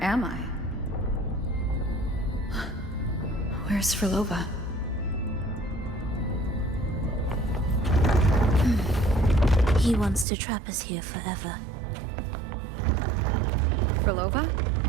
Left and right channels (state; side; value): drops out; left; at 10.2 s